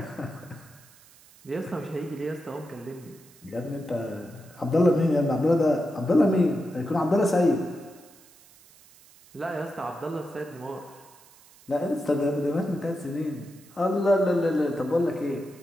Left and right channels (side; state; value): right; noise; hiss, 25 dB below the sound